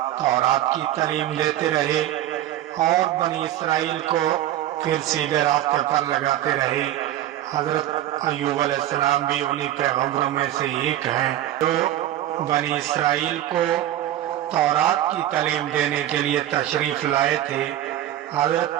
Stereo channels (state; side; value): quieter; left; 12.9 dB